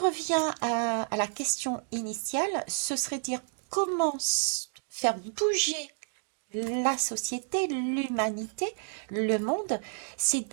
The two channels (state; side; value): silent; left; digital silence